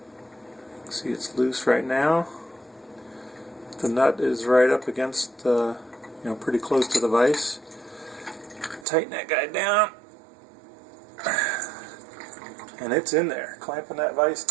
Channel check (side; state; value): left; drops out; at 8.8 s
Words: See, it's loose right now. The nut is right up against, pretty close to the vise. Tighten that guy down, and it's in there. Clamping that vise